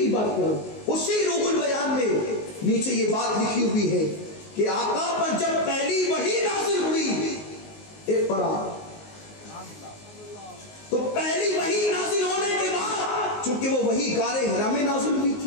بات کرو، اسی روح البیان میں نیچے یہ بات لکھی ہوئی ہے کہ آقا پر جب پہلی وحی نازل ہوئی اقرا، تو پہلی وحی نازل ہونے کے بعد چونکہ وہ وحی غار حرا میں نازل ہوئی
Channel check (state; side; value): late; right; 19 ms